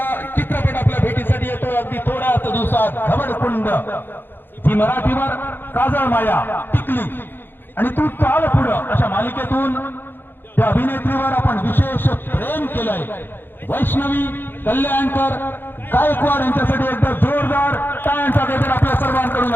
चित्रपट आपल्या भेटीसाठी येतो अगदी थोड्याच दिवसात. घबडकुंड ही मराठीवर काजळ माया, टिकली आणि तू चाल पुढं अशा मालिकेतून त्या अभिनेत्रीवर आपण विशेष प्रेम केलंय. वैष्णवी कल्याणकर गायकवाड यांच्यासाठी एकदा जोरदार टाळ्यांचा गजर आपल्या सर्वांकडून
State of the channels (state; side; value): late; right; 0.098 ms